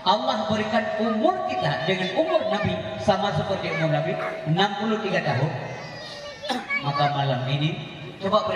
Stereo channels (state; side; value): identical; both; correlation 1.00